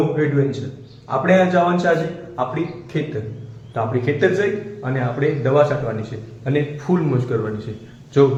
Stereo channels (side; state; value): both; identical; correlation 1.00